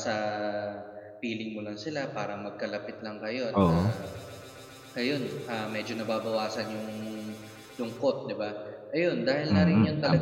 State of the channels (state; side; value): identical; both; correlation 1.00